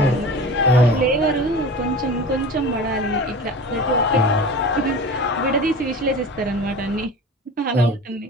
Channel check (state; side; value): normal; both; correlation 0.35